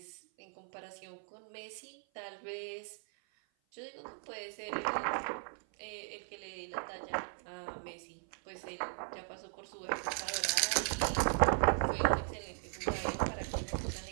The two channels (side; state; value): left; silent; 52 dB below the other